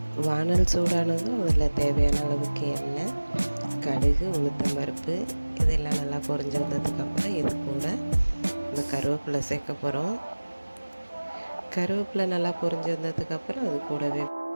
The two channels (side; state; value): both; inverted; correlation -1.00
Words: வானல் சூடானதும் அதில் தேவையான அளவுக்கு எண்ணெய், கடுகு, உளுத்தம்பருப்பு இதெல்லாம் நல்லா பொரிஞ்சு வந்ததுக்கப்புறம் இது கூட இந்த கருவேப்பிலை சேர்க்க போகிறோம். கருவேப்பிலை நல்லா பொரிஞ்சு வந்ததுக்கப்புறம் அது கூடவே